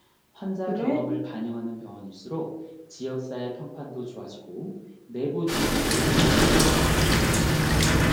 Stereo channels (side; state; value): both; identical; correlation 1.00